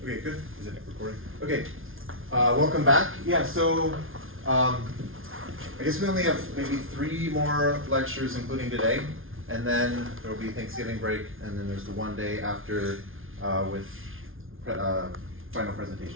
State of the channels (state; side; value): late; left; 0.60 ms